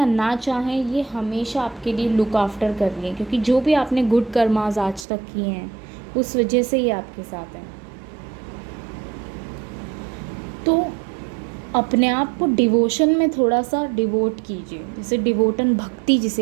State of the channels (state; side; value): drops out; left; at 5.1 s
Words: ना चाहें, ये हमेशा आपके लिए लुक आफ्टर कर रही है, क्योंकि जो भी आपने गुड कर्मास आज तक किए हैं उस वजह से ये आपके साथ है। तो अपने आप को डिवोशन में थोड़ा सा डिवोट कीजिए, जैसे डिवोटन भक्ति